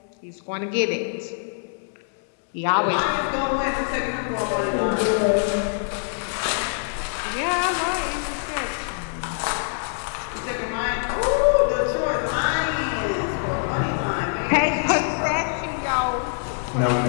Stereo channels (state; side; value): silent; right; digital silence